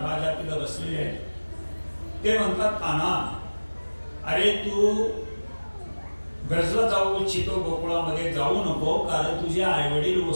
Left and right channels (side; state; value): both; inverted; correlation -1.00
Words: राजा तिथं बसलेले आहेत. ते म्हणतात, कान्हा अरे तू ब्रजला जाऊ इच्छितो, गोकुळामध्ये जाऊ नको, कारण तुझे आई वडील